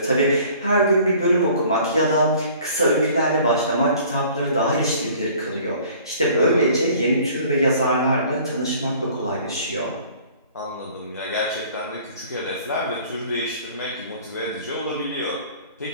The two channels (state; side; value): inverted; both; correlation -0.51